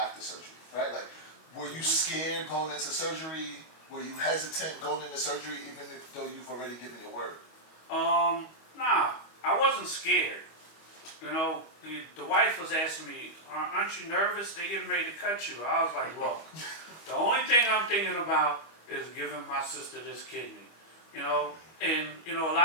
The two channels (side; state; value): right; late; 25 ms